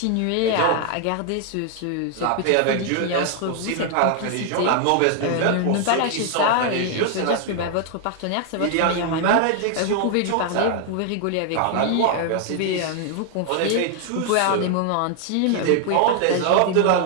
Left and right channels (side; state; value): both; different; correlation 0.00